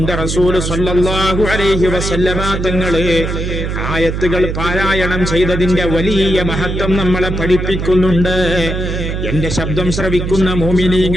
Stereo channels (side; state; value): right; noise; hum, 3 dB below the sound